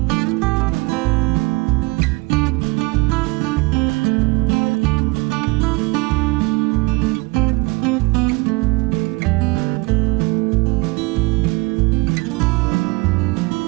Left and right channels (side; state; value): left; quieter; 25.4 dB